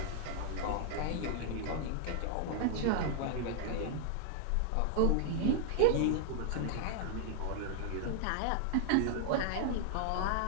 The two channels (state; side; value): different; both; correlation -0.01